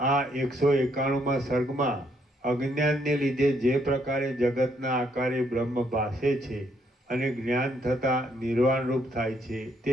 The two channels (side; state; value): both; normal; correlation 0.72